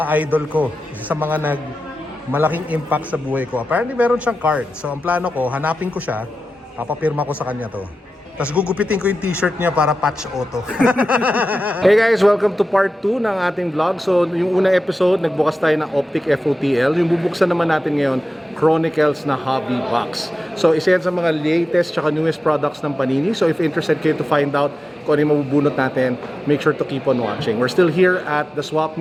idol ko, isa sa mga malaking impact sa buhay ko. Apparently meron siyang card. So ang plano ko, hanapin ko siya, papapirma ko sa kanya to. Tapos gugupitin ko yung t-shirt niya para patch auto. Hey guys, welcome to part 2 ng ating vlog. So yung unang episode, nagbukas tayo ng Optic FOTL. Yung bubuksan naman natin ngayon, Chronicles na hobby box. So isa yan sa mga latest tsaka newest products ng Panini. So if interested kayo to find out kung ano yung mabubunot natin, make sure to keep on watching. We're still here at the Swap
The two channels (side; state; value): both; normal; correlation 0.93